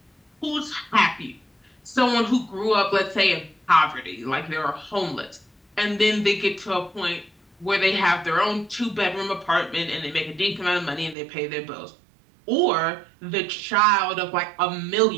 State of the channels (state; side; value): drops out; left; at 11.2 s